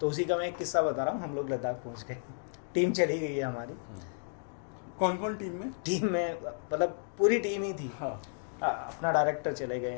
उसी का मैं एक किस्सा बता रहा हूँ। हम लोग लद्दाख पहुँच गए, टीम चली गई है हमारी। कौन कौन टीम में? टीम में मतलब पूरी टीम ही थी। अपना डायरेक्टर चले गए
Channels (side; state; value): right; silent; digital silence